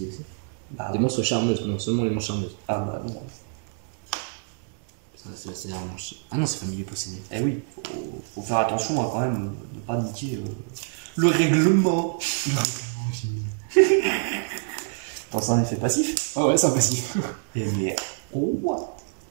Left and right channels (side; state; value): left; silent; digital silence